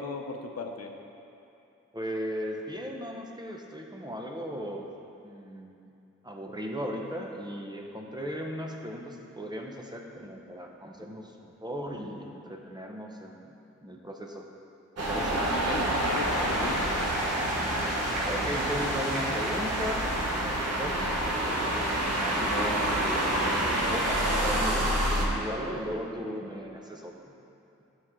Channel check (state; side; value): normal; both; correlation 0.31